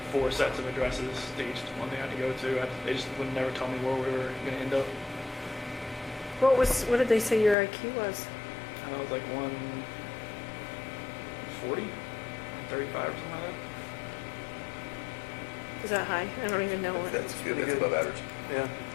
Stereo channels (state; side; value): drops out; right; at 7.6 s